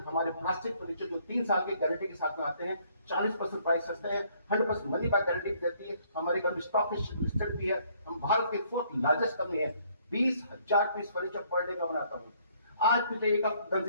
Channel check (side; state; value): both; inverted; correlation -0.64